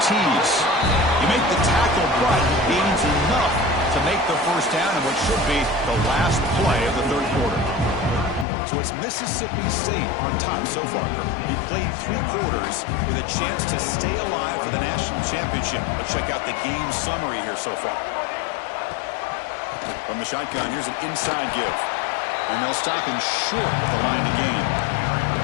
tease. You make the tackle, but gains enough to make the first down in what should be the last play of the third quarter. So it's Mississippi State on top so far. He played 3 quarters with a chance to stay alive for the national championship. Let's check out the game summary here so far. From the shotgun, here's an inside give. And they'll stop him short of the line to gain.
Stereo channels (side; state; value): right; drops out; at 8.5 s